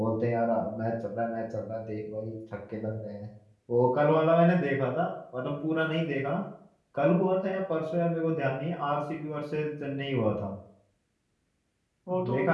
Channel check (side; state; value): both; identical; correlation 1.00